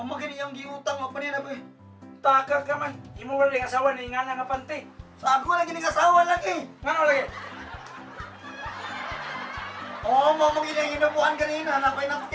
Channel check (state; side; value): identical; both; correlation 1.00